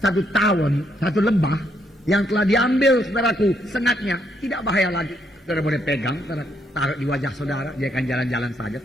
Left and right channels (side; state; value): both; normal; correlation 0.74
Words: 1 tahun, 1 lembah yang telah diambil saudaraku, sengatnya tidak bahaya lagi. Saudara boleh pegang, saudara taruh di wajah saudara, dia akan jalan-jalan saja,